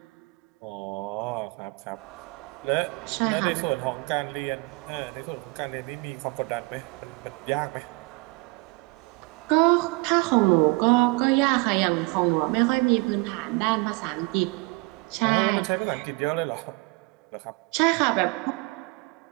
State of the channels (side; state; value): left; quieter; 27.5 dB